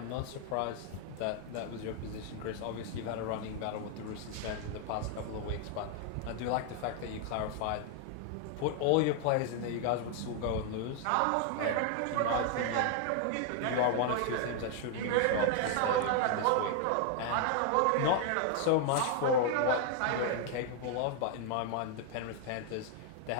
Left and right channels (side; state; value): both; different; correlation 0.00